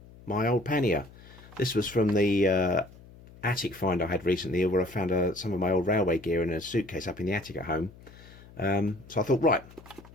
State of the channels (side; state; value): left; noise; hum, 21 dB below the sound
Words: My old pannier. This was from the attic find I had recently, where I found some of my old railway gear in a suitcase up in the attic at home. So I thought, right,